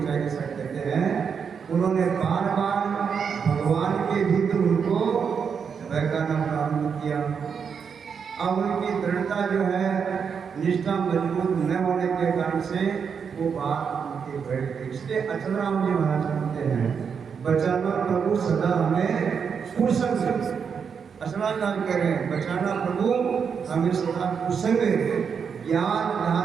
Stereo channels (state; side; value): quieter; left; 6.5 dB